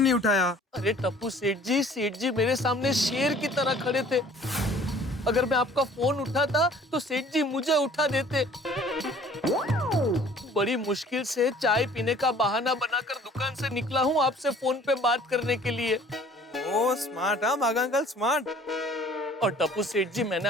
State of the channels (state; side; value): normal; both; correlation 0.52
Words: नहीं उठाया? अरे टप्पू सेठ जी मेरे सामने शेर की तरह खड़े थे। अगर मैं आपका फोन उठाता तो सेठ जी मुझे उठा देते। बड़ी मुश्किल से चाय पीने का बहाना बनाकर दुकान से निकला हूँ आपसे फोन पे बात करने के लिए। ओ स्मार्ट, हाँ बागा अंकल स्मार्ट। और टप्पू सेठ जी, मैंने